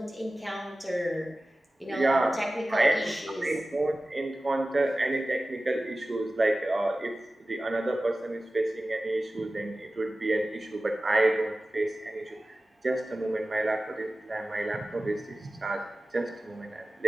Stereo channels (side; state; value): both; normal; correlation 0.96